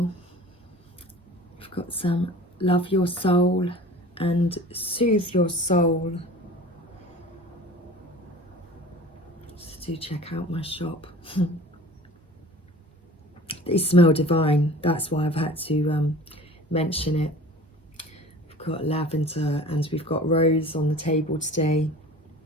I've got some Love Your Soul and Soothe Your Soul. So do check out my shop. They smell divine, that's why I've had to mention it. We've got lavender and we've got rose on the table today.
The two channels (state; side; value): normal; both; correlation 0.42